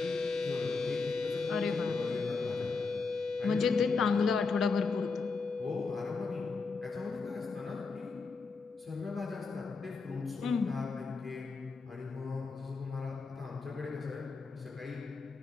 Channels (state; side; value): quieter; right; 4.4 dB